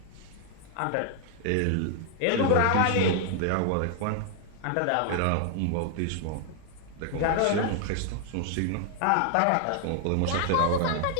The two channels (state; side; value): different; both; correlation 0.00